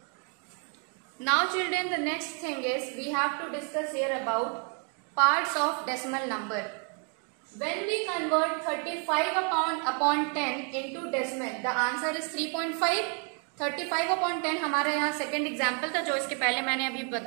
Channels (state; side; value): quieter; left; 39.9 dB